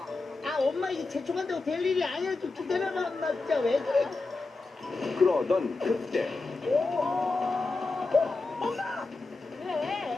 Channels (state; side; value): quieter; right; 3.6 dB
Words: 아, 엄마 이제 재촉한다고 될 일이 아니야. 좀 기다려봐, 엄마. 진짜 왜 그래? 그러던 그때 엄마!